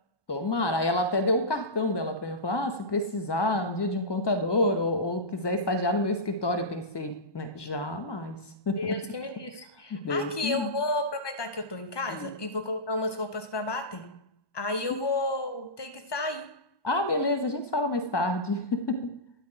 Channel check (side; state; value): right; late; 1.2 ms